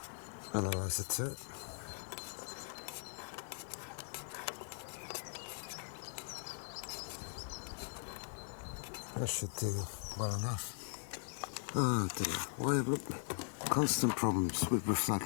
analyzer to it. That should do well enough. Oh dear, why look, constant problems with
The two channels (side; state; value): right; silent; 51 dB below the other